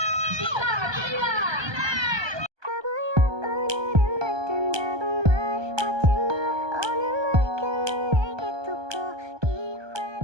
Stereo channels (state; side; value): late; left; 1.2 ms